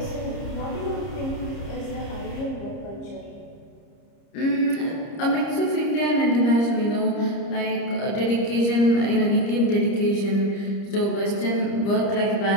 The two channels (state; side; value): late; right; 30 ms